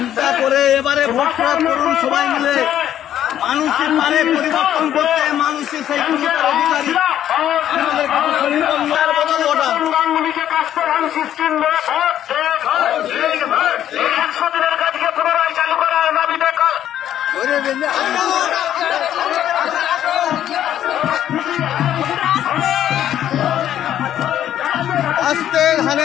করে এবারে ভোট করুন সবাই মিলে। মানুষের পারে পরিবর্তন করতে, মানুষের সেই অধিকারী আমাদের বদল ওটা আস্তে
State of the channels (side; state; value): right; quieter; 11.1 dB